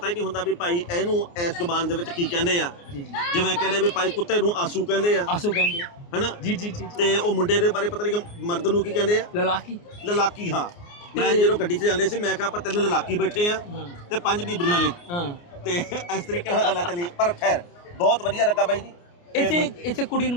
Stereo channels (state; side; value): late; right; 29 ms